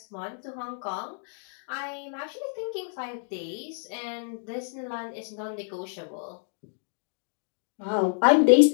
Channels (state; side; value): silent; right; 59 dB below the other